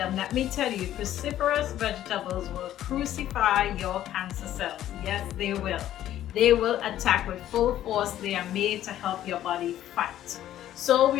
let me tell you, cruciferous vegetables will crucify your cancer cells. Yes, they will. They will attack with full force. They are made to help your body fight. So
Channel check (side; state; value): right; quieter; 12.4 dB